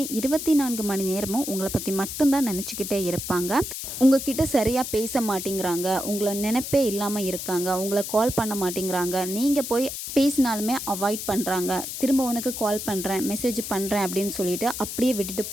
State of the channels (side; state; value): left; noise; hiss, 6 dB below the sound